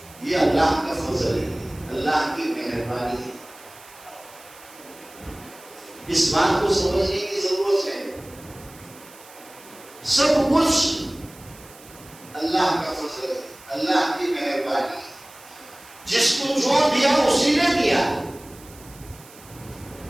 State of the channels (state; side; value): noise; right; hiss, 21 dB below the sound